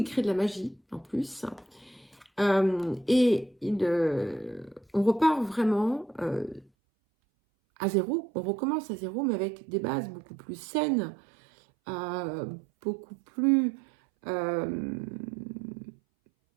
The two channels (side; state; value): left; drops out; at 6.7 s